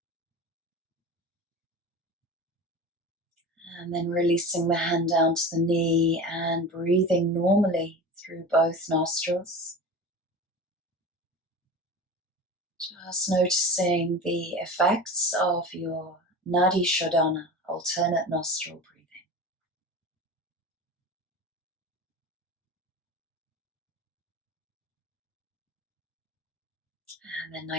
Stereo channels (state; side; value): normal; both; correlation 0.32